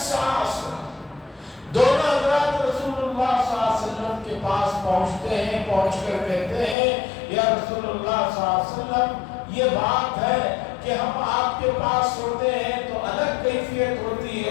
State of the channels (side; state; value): right; drops out; at 6.8 s